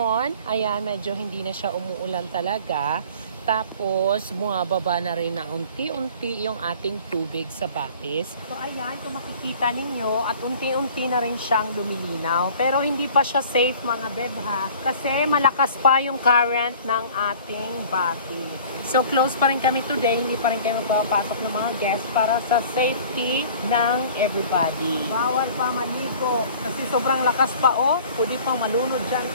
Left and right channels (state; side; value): inverted; both; correlation -0.47